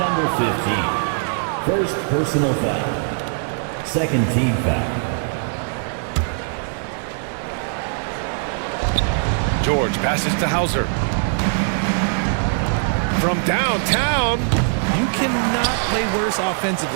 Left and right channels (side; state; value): left; silent; 59 dB below the other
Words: 15. First personal foul. Second team foul. George passes to Hauser. From downtown. You cannot play worse